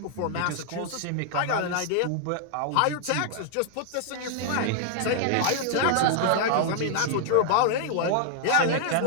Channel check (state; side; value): different; both; correlation -0.01